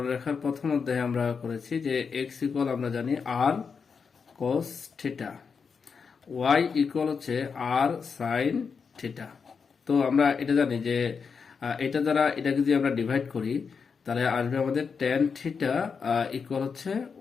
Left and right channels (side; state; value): right; quieter; 5.7 dB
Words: প্রথম অধ্যায়ে আমরা করেছি যে এক্স ইকুয়াল আমরা জানি আর cos থিটা, y ইকুয়াল হচ্ছে আর সাইন থিটা। তো আমরা এটা জানি যে এটা দ্বারা এটাকে যদি আমরা ডিভাইড করি তাহলে আসবে আমাদের tan থিটা ইকুয়াল হচ্ছে